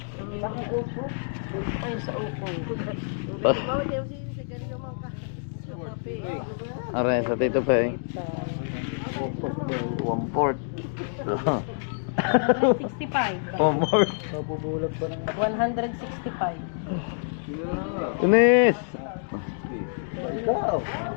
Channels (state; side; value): silent; right; digital silence